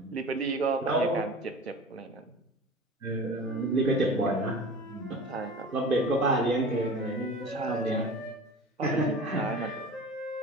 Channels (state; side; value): normal; both; correlation 0.38